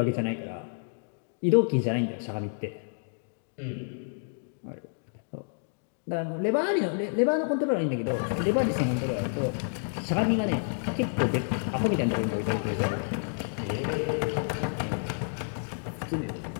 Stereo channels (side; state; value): right; silent; digital silence